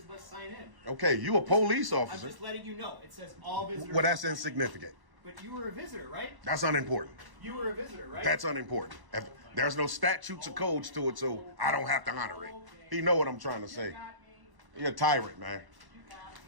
must sign in. Okay, you a police I'm officer. just letting you know. It says all visitors. Well, that's must sign in. insignificant. But you were a visitor, right? That's unimportant. You were a visitor, right? That's unimportant. If there's no statutes or codes to it, so I don't have to honor it. You know what I'm trying to say. You're a tyrant, man.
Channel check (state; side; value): late; left; 1.1 ms